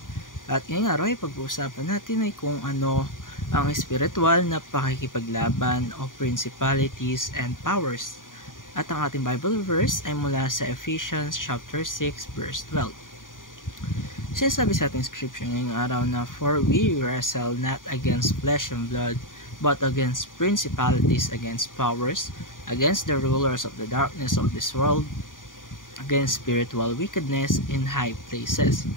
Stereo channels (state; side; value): late; right; 0.89 ms